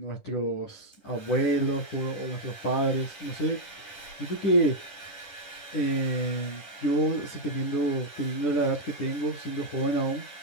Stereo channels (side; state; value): right; late; 10 ms